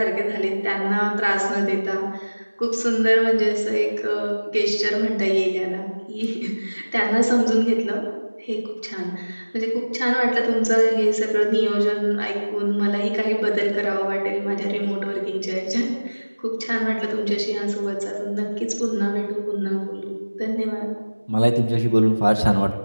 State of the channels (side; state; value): both; inverted; correlation -1.00